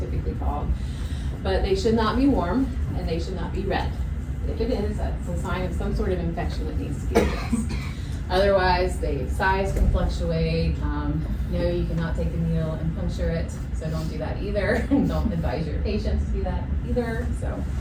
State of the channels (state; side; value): identical; both; correlation 1.00